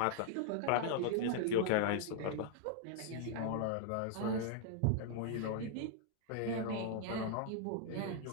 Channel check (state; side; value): different; both; correlation 0.00